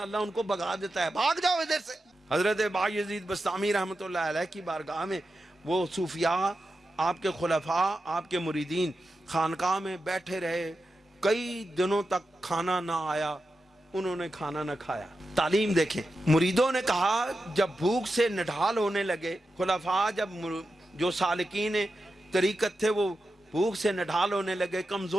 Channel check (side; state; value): both; normal; correlation 0.90